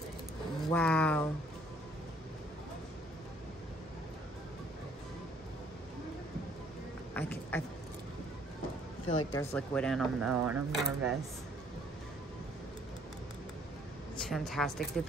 Wow. I feel like there's liquid in them though, and I'm nervous. It's fantastic. They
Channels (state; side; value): normal; both; correlation 0.61